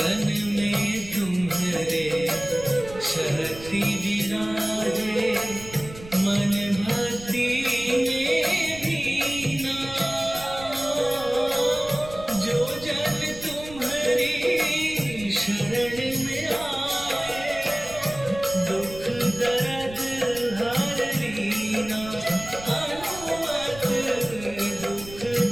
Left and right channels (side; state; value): right; noise; rumble, 16 dB below the sound